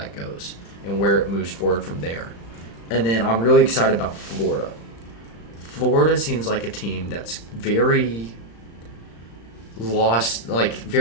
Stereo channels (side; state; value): right; late; 35 ms